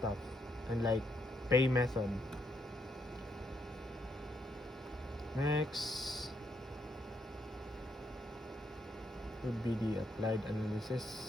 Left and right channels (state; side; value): normal; both; correlation 0.76